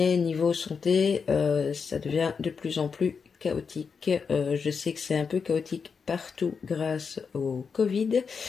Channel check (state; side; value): quieter; right; 5.7 dB